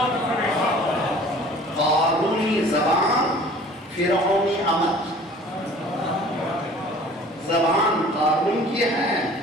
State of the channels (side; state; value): both; normal; correlation 0.48